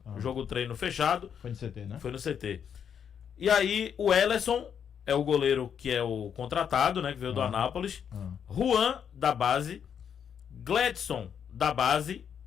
Jogo treino fechado. Foi no CT, né? Foi no CT. E aí o Ellerson é o goleiro que é o contratado, né? Que veio do Anápolis. Juan, da base. Gledson, da base.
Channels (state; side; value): quieter; right; 7.9 dB